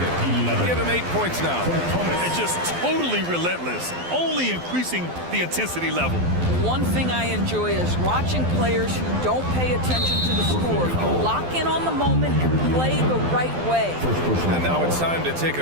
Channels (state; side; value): late; left; 12 ms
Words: Give him 8 points now. And just totally relentless, only increasing the intensity level. One thing I enjoy is watching players who don't pay attention to the score lock in on the moment and play the right way. And now it's time to take